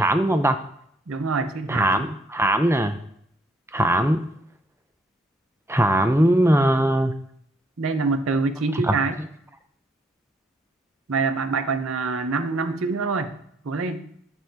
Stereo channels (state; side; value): normal; both; correlation 0.69